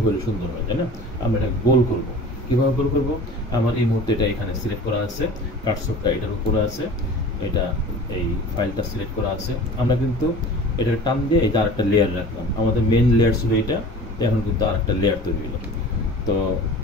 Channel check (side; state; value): both; normal; correlation 0.41